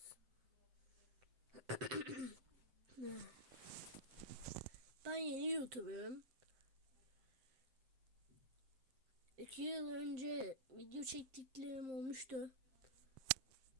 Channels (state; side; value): late; left; 7.7 ms